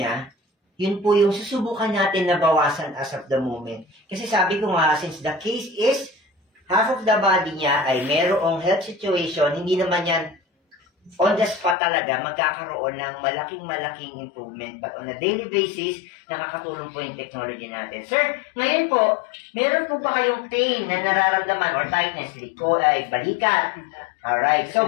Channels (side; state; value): right; drops out; at 11.8 s